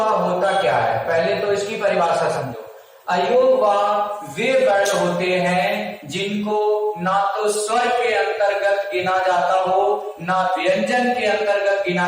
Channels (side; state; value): both; identical; correlation 1.00